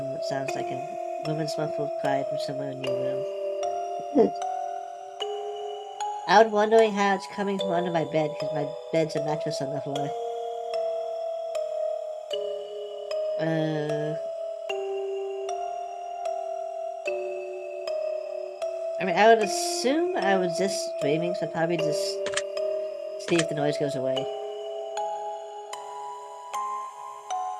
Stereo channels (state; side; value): identical; both; correlation 1.00